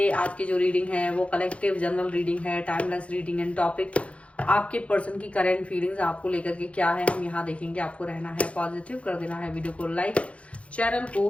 आज की जो रीडिंग है वो कलेक्टिव जनरल रीडिंग है, टाइमलेस रीडिंग एंड टॉपिक आपके पर्सन की करंट फीलिंग्स आपको लेकर के क्या है हम यहाँ देखेंगे। आपको रहना है पॉजिटिव, कर देना है वीडियो को लाइक, चैनल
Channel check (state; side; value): late; right; 0.063 ms